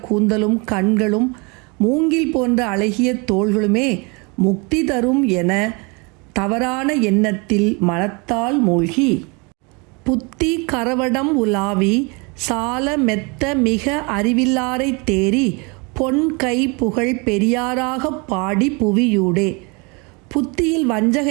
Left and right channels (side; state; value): left; quieter; 30.0 dB